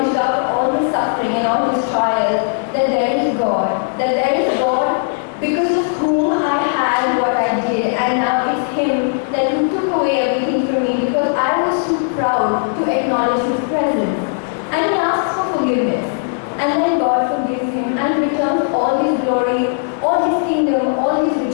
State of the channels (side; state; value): right; silent; digital silence